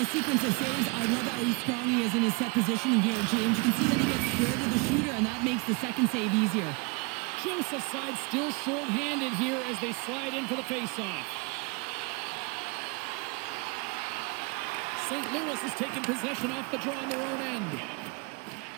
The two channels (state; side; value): quieter; left; 30.0 dB